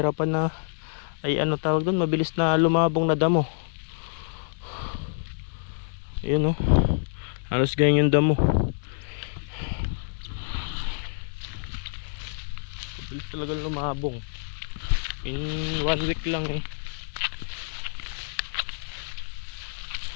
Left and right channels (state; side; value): silent; right; digital silence